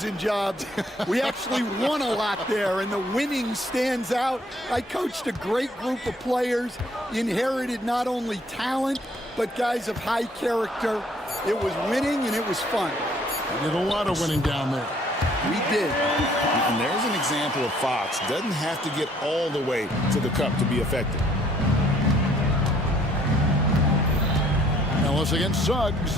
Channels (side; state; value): both; normal; correlation 0.62